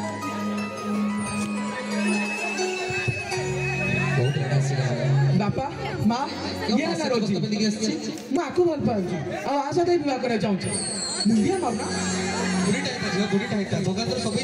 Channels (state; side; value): identical; both; correlation 1.00